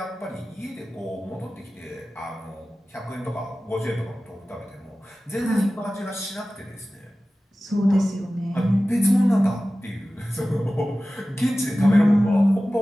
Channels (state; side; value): normal; both; correlation 0.96